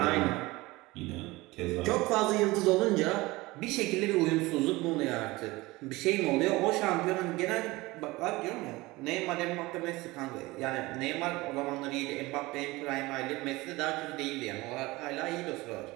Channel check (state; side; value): quieter; left; 20.9 dB